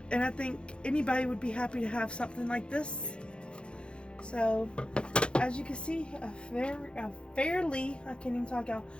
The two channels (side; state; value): right; late; 0.055 ms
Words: And I think anybody would be happy to have something like this. So, as you can see, a fairly, I can't even talk out,